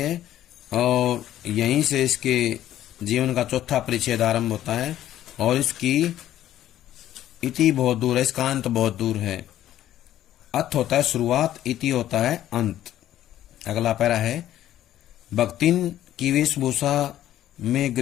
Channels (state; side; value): quieter; right; 12.5 dB